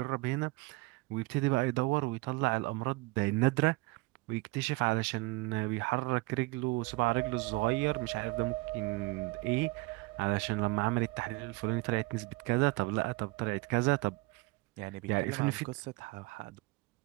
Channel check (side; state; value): left; quieter; 23.7 dB